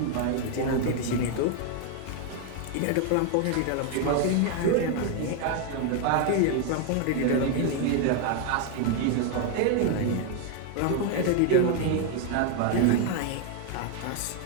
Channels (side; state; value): both; different; correlation 0.01